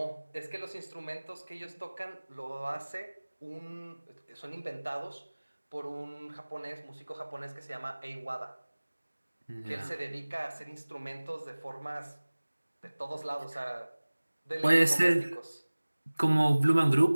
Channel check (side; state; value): both; inverted; correlation -1.00